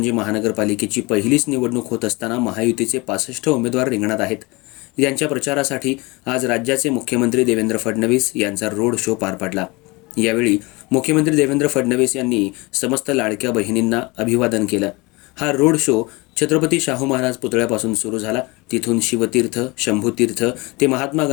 महानगरपालिकेची पहिलीच निवडणूक होत असताना महायुतीचे 65 उमेदवार रिंगणात आहेत. यांच्या प्रचारासाठी आज राज्याचे मुख्यमंत्री देवेंद्र फडणवीस यांचा रोड शो पार पडला. यावेळी मुख्यमंत्री देवेंद्र फडणवीस यांनी समस्त लाडक्या बहिणींना अभिवादन केलं. हा रोड शो छत्रपती शाहू महाराज पुतळ्यापासून सुरू झाला. तिथून शिवतीर्थ, शंभूतीर्थ ते महात्मा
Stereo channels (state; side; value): quieter; right; 24.9 dB